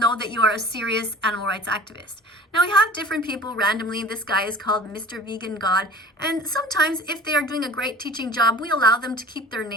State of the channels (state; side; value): normal; both; correlation 0.42